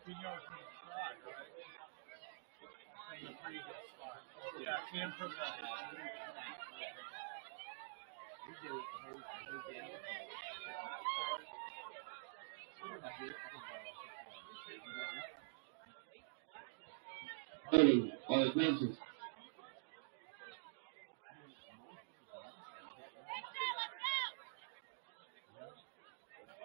not able to hang on there, and it'll bring up 3rd and 9 coming up. Yeah, I mean, there's really no explanation to give you. They just have to make a play. 4:35 left here in the second quarter. As the officials, a late flag was thrown, and this is going to be holding on the offense, so this will push Manuel back from the 24 all the way back to the 34. So a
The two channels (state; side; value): silent; left; digital silence